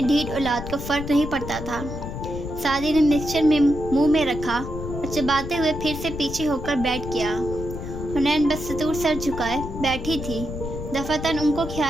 ढीठ औलाद को फर्क नहीं पड़ता था। सादी ने मिक्सचर में मुंह में रखा और चबाते हुए फिर से पीछे होकर बैठ गया। हुनैन बस सतूर सर झुकाए बैठी थी। दफातन उनको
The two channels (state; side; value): noise; left; rumble, 8 dB below the sound